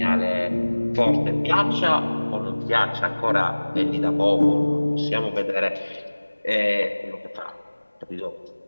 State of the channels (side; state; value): both; inverted; correlation -1.00